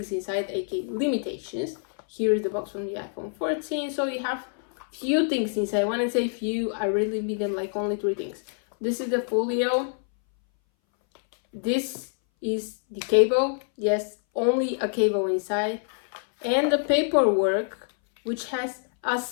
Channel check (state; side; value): silent; right; 60 dB below the other